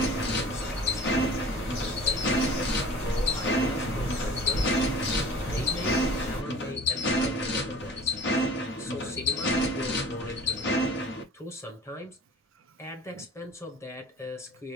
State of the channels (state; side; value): normal; both; correlation 0.46